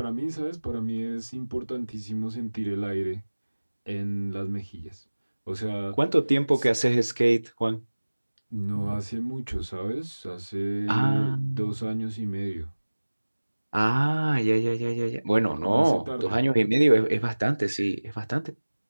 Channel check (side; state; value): both; inverted; correlation -1.00